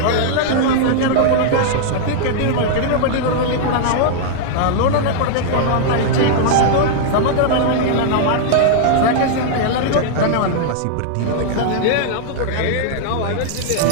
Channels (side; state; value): both; different; correlation -0.01